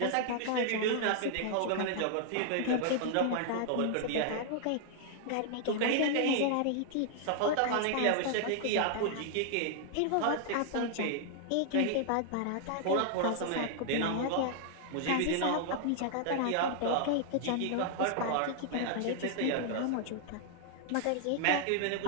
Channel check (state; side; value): different; both; correlation 0.00